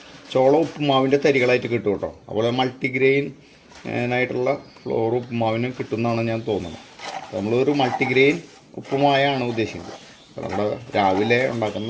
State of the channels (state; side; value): identical; both; correlation 1.00